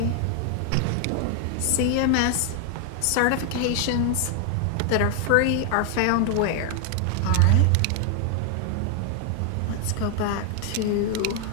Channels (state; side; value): different; both; correlation 0.00